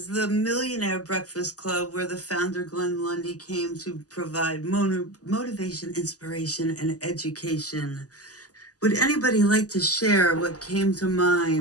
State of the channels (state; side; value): late; right; 0.67 ms